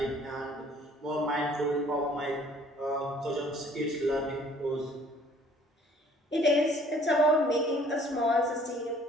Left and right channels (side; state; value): both; normal; correlation 0.56